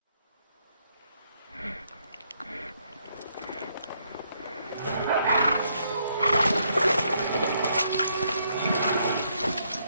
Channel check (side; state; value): both; inverted; correlation -0.73